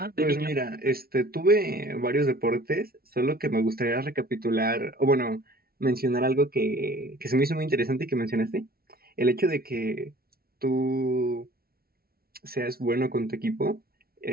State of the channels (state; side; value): late; left; 0.44 ms